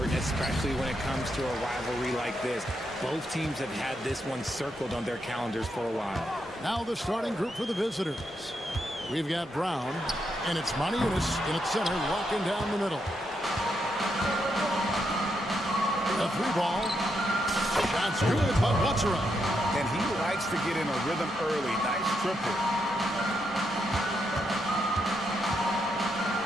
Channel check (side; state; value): both; normal; correlation 0.81